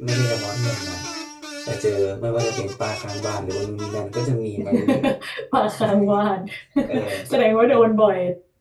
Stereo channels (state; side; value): identical; both; correlation 1.00